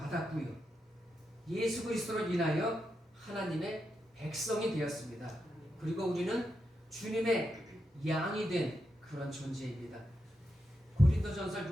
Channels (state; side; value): normal; both; correlation 0.85